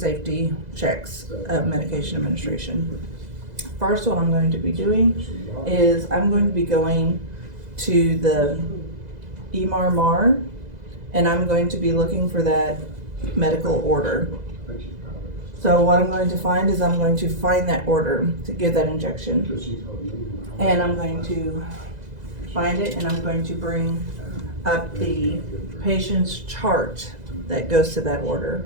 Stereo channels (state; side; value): late; left; 2.0 ms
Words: checks of medication administration. First, what I'm going to be doing is I'm going to be going to the EMR, and I'm going to be looking for that medical order. So what I'm going to find is I'm going to find that order to give that injection, and I'm going to find it, and I'm going to bring up the patient's chart that goes to that order,